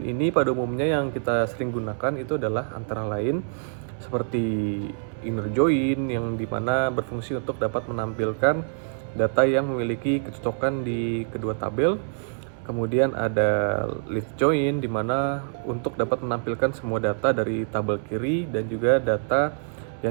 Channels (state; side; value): silent; left; 61 dB below the other